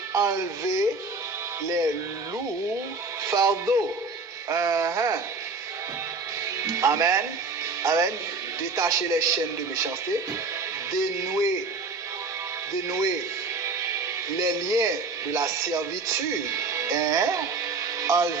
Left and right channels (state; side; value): quieter; left; 4.0 dB